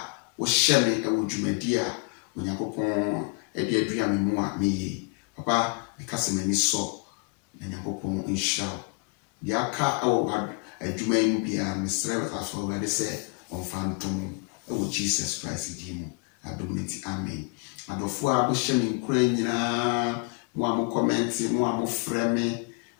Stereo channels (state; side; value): quieter; right; 32.5 dB